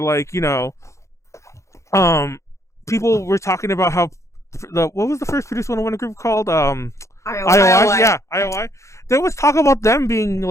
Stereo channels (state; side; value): late; right; 0.14 ms